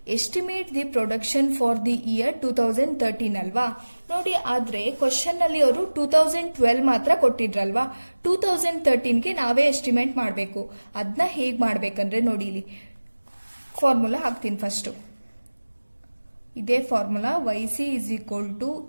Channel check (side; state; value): both; inverted; correlation -1.00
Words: Estimate the production for the year 2013 ಅಲ್ವಾ. ನೋಡಿ ಆದ್ರೆ ಕ್ವಶನ್ ಅಲ್ಲಿ ಅವರು 2012 ಮಾತ್ರ ಕೊಟ್ಟಿದ್ರಲ್ವಾ. 2013ಗೆ ನಾವೇ ಎಸ್ಟಿಮೇಟ್ ಮಾಡಬೇಕು. ಅದನ್ನ ಹೇಗ್ ಮಾಡ್ಬೇಕಂದ್ರೆ ನೋಡಿ ಇಲ್ಲಿ ಫಾರ್ಮುಲಾ ಹಾಕ್ತೀನಿ ಫಸ್ಟ್. ಇದೇ formula YC is equal to